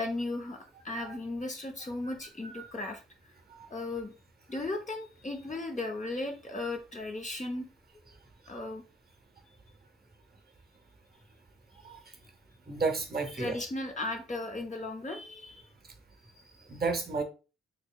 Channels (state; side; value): normal; both; correlation 0.60